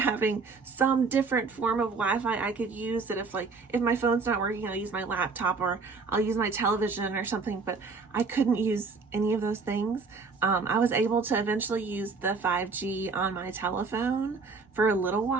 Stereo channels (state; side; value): quieter; left; 4.4 dB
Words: some different form of Wi-Fi I could use, that if my phone's not working, I'll use my laptop or I'll use my television or something. But I couldn't use any of those things. I was able to eventually use the 5G on my telephone for a little